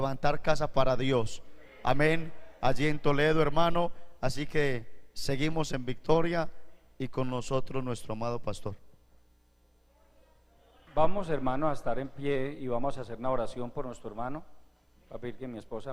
casa para Dios, amén, allí en Toledo, hermano. Así que seguimos en victoria y con nosotros nuestro amado pastor. Vamos, hermanos, a estar en pie y vamos a hacer una oración por nuestro hermano. Voy a pedir que mi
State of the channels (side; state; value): both; identical; correlation 1.00